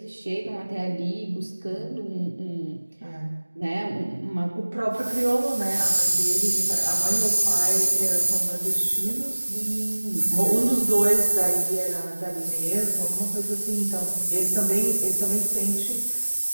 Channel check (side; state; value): both; inverted; correlation -1.00